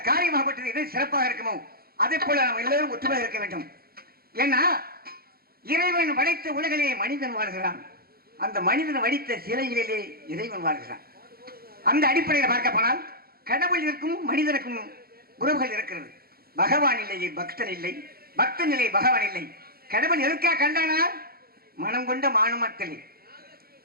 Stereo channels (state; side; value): late; left; 0.44 ms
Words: காரியமாகப்பட்டது எது சிறப்பாக இருக்குமோ அதே போல நாம் எல்லோரும் ஒற்றுமையாக இருக்க வேண்டும். ஏன்னா இறைவன் படைத்த உலகிலே மனிதன் வாழ்கிறான், அந்த மனிதன் வடித்த சிலைகளிலே இறைவன் வாழ்கிறான். அந்த அடிப்படையில் பார்க்க போனால் கடவுள் இருக்கும் மனிதனுக்கும் உறவுகள் இருக்கிறது. பகவான் இல்லையே பக்தன் இல்லை, பக்தன் இல்லை பகவான் இல்லை. கடவுள் எதற்கா கண்டானா மனம் கொண்ட மானமத்திலே